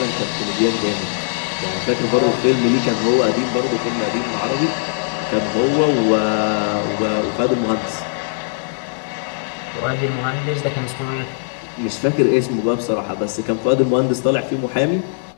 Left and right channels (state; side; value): silent; right; 66 dB below the other